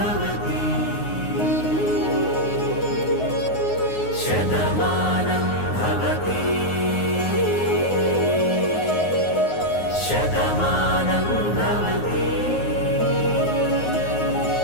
శతమానం భవతి శతమానం భవతి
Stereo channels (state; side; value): late; right; 9.5 ms